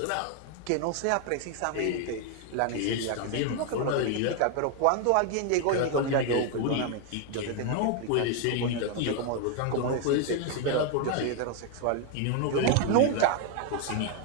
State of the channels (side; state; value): both; different; correlation 0.01